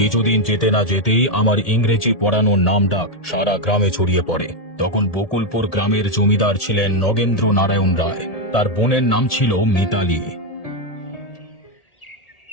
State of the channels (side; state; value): right; late; 1.8 ms